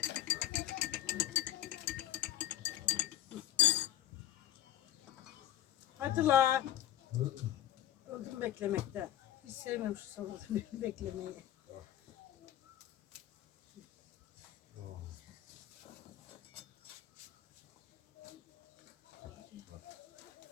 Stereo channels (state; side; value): quieter; right; 12.4 dB